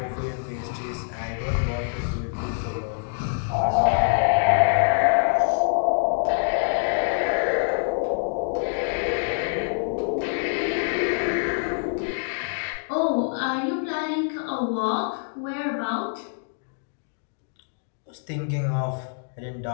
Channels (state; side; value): silent; right; digital silence